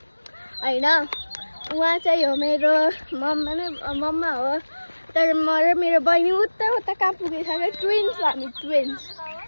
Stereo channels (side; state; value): both; inverted; correlation -1.00